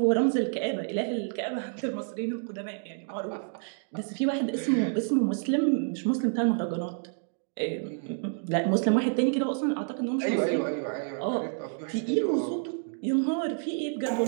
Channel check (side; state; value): left; silent; digital silence